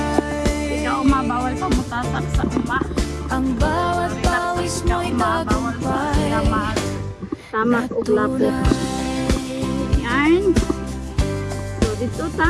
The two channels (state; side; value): identical; both; correlation 1.00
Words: Si Kauma bawal pa mutasak sa uma. Ang bawat pawis mo'y tagumpay. Tamak o lapo. Yan. So dito